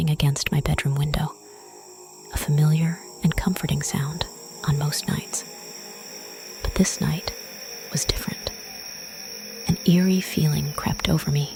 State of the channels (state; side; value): identical; both; correlation 1.00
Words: against my bedroom window, a familiar and comforting sound on most nights. But this night was different. An eerie feeling crept over me